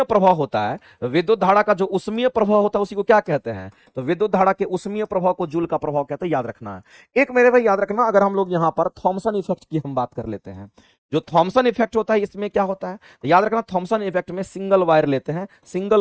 प्रभाव होता है, विद्युत धारा का जो उष्मीय प्रभाव होता है उसी को क्या कहते हैं? तो विद्युत धारा के उष्मीय प्रभाव को जूल का प्रभाव कहते हैं। याद रखना है। एक मेरे भाई याद रखना, अगर हम लोग यहां पर थॉमसन इफेक्ट की हम बात कर लेते हैं, जो थॉमसन इफेक्ट होता है इसमें क्या होता है? तो याद रखना, थॉमसन इफेक्ट में सिंगल वायर लेते हैं,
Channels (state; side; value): identical; both; correlation 1.00